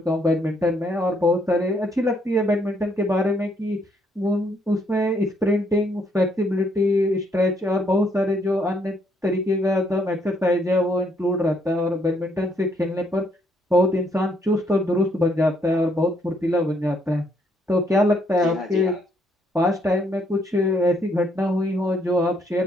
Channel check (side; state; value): both; normal; correlation 0.71